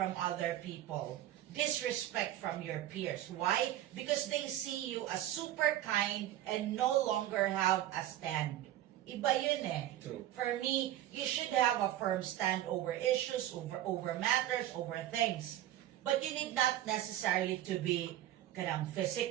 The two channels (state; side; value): quieter; left; 13.1 dB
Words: other people. Disrespect from your peers. Why? Because they see you as super kind and no longer have a stand. Iba yun eh. True. For me, you should have a firm stand over issues, over matters, over things. But you need not necessarily to be